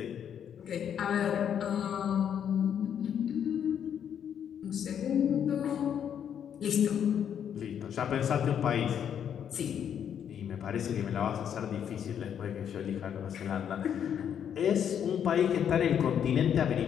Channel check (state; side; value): quieter; right; 8.7 dB